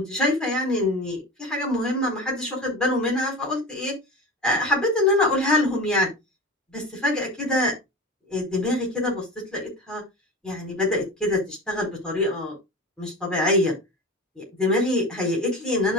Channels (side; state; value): both; normal; correlation 0.30